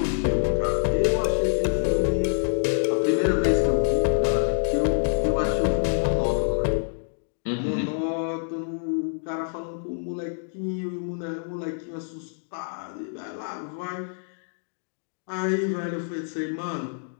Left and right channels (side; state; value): right; silent; digital silence